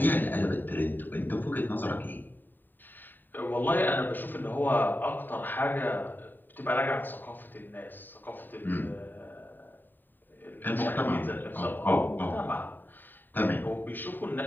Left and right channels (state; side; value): late; right; 0.091 ms